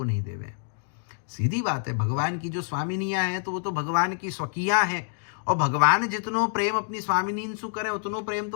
नहीं देवे। सीधी बात है, भगवान की जो स्वामिनियां हैं तो वो तो भगवान की स्वकीयां हैं, और भगवान जितनो प्रेम अपनी स्वामिनीन सु करें उतनो प्रेम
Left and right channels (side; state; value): right; silent; digital silence